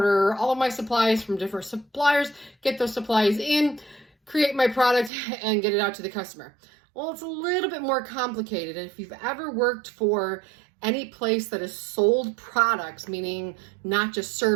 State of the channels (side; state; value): left; drops out; at 5.1 s